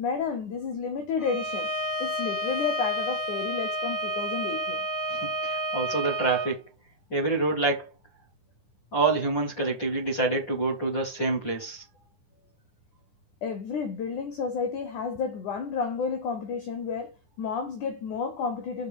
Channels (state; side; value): late; right; 9.9 ms